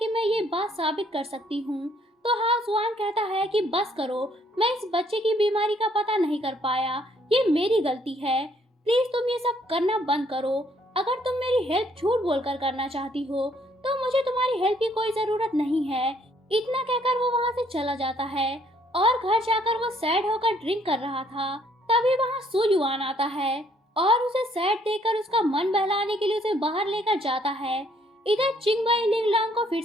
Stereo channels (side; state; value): both; normal; correlation 0.66